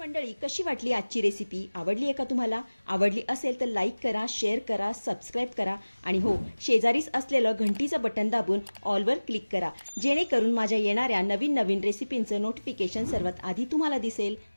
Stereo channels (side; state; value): both; inverted; correlation -1.00